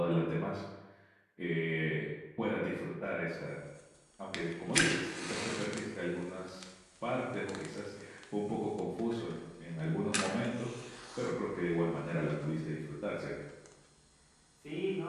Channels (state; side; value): identical; both; correlation 1.00